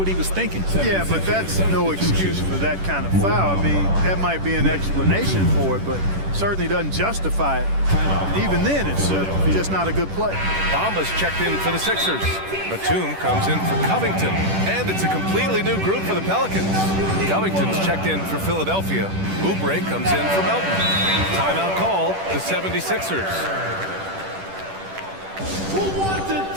he was thinking. Yeah, but that's no excuse for that kind of foul. I mean, that might be an explanation for it, but certainly doesn't justify it. And even then, it's just not a good play. Bamba's checked in for the Sixers. Batum comes in for Covington. And it's a completely new group for the Pelicans. Covington's checked in for Philadelphia. Oubre comes in for Melton. Timeout call, the 76ers. Who wants a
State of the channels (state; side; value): late; left; 10 ms